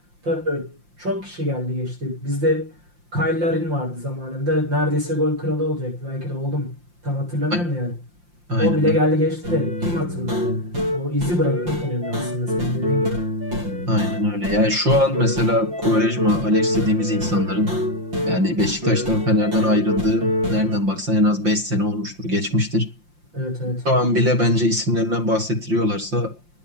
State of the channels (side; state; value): left; late; 5.7 ms